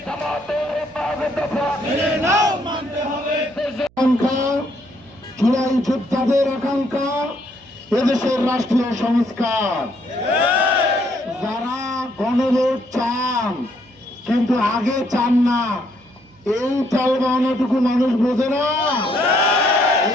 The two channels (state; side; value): noise; right; hum, 30 dB below the sound